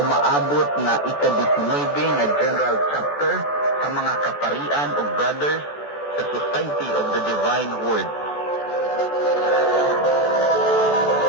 umaabot nga ika-19 nga General Chapter sa mga kaparian o brothers sa Society of the Divine Word.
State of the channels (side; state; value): right; late; 14 ms